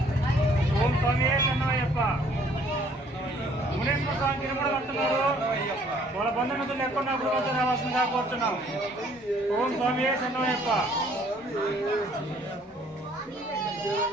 ఓం స్వామి శరణమయ్యప్ప. మునేశ్వర స్వామి గిరుముడు కడుతున్నారు. వాళ్ళ బంధుమిత్రులు ఎక్కడున్నా గుడి వద్దకు రావాల్సిందిగా కోరుతున్నాం. ఓం స్వామి శరణమయ్యప్ప.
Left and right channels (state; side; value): normal; both; correlation 0.60